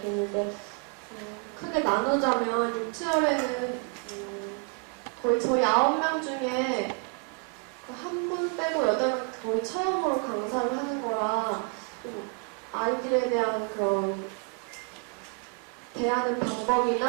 있는데 크게 나누자면 6, 7월에는 거의 저희 9명 중에 한 분 빼고 8명 거의 처음으로 강사를 하는 거라 좀 아이들에 대한 그런 대하는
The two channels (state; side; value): quieter; left; 33.8 dB